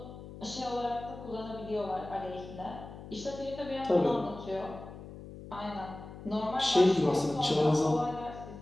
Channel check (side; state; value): left; noise; hum, 14 dB below the sound